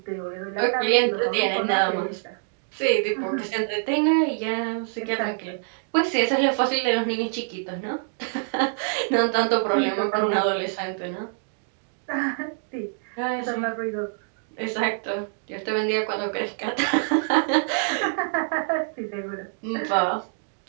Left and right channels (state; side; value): silent; left; digital silence